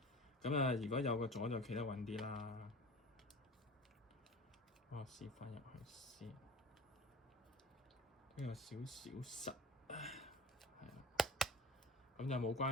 咁啊，如果有個阻就企得穩啲啦。我試翻入去先，呢個少少實，係啦。咁就冇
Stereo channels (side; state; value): both; normal; correlation 0.39